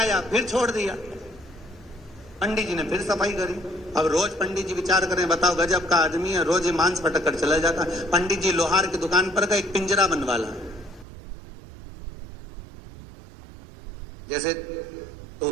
फिर छोड़ दिया। पंडित जी ने फिर सफाई करी। अब रोज पंडित जी विचार करें, बताओ गजब का आदमी है, रोज ये मांस पटक कर चला जाता। पंडित जी लोहार की दुकान पर गए, एक पिंजरा बनवा ला। जैसे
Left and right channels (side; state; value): left; drops out; at 11.1 s